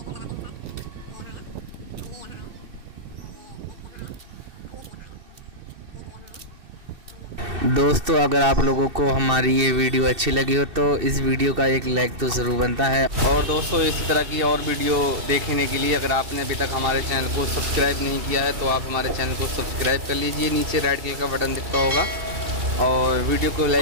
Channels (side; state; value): left; late; 2.6 ms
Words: दोस्तों अगर आप लोगों को हमारी ये वीडियो अच्छी लगी हो तो इस वीडियो का एक लाइक तो ज़रूर बनता है। और दोस्तों इसी तरह की और वीडियो देखने के लिए अगर आपने अभी तक हमारे चैनल को सब्सक्राइब नहीं किया है तो आप हमारे चैनल को सब्सक्राइब कर लीजिए। नीचे रेड कलर का बटन दिखता होगा और वीडियो को